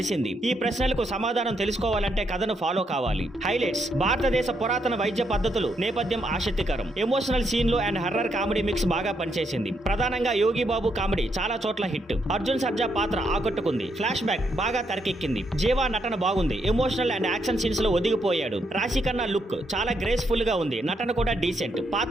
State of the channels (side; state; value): both; normal; correlation 0.77